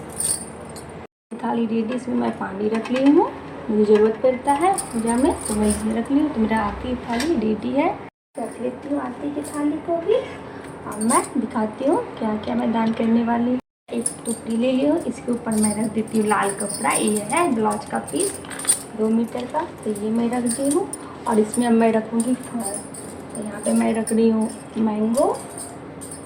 थाली रेडी, इसमें मैं पानी रख ली हूँ, मुझे ज़रूरत पड़ता है पूजा में तो मैं इसमें रख ली हूँ। तो मेरा आरती थाली रेडी है। रख लेती हूँ आरती की थाली को भी। अब मैं दिखाती हूँ क्या क्या मैं दान करने वाली हूँ। एक टुकड़ी ले ली हूँ, इसके ऊपर मैं रख देती हूँ लाल कपड़ा। ये है ब्लाउज का पीस 2 मीटर का, तो ये मैं रख दी हूँ। और इसमें अब मैं रखूँगी फल। तो यहाँ पे मैं रख रही हूँ मैंगो,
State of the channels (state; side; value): identical; both; correlation 1.00